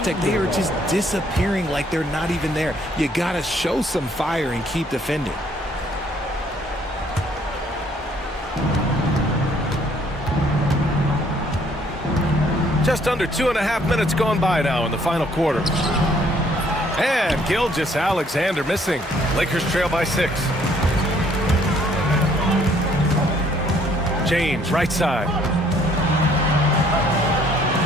they are just disappearing like they're not even there. You gotta show some fire and keep defending. Just under 2.5 minutes gone by now in the final quarter. And Gilgeous-Alexander missing. Lakers trail by 6. James, right side.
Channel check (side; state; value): both; normal; correlation 0.63